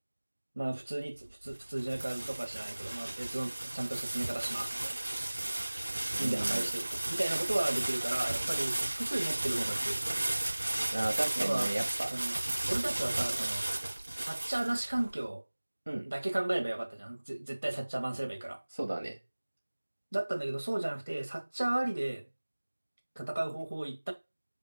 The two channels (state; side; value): inverted; both; correlation -1.00